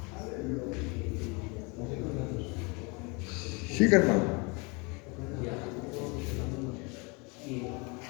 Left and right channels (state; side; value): quieter; right; 29.7 dB